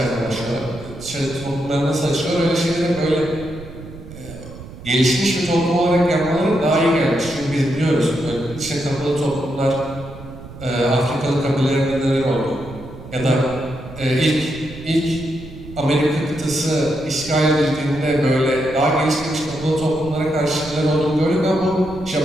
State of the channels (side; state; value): right; noise; rumble, 15 dB below the sound